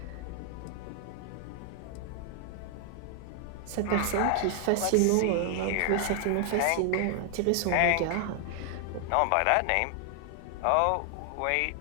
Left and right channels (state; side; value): different; both; correlation 0.00